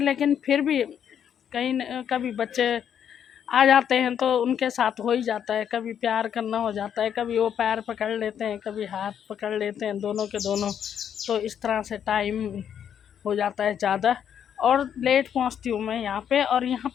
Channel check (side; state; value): right; quieter; 8.8 dB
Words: लेकिन फिर भी कभी बच्चे आ जाते हैं तो उनके साथ हो ही जाता है। कभी प्यार करना हो जाता है, कभी वो पैर पकड़ लेते हैं, कभी हाथ पकड़ लेते हैं, दोनों के दोनों। तो इस तरह से टाइम हो जाता है ज़्यादा और लेट पहुंचती हूँ मैं यहाँ पे। और यहाँ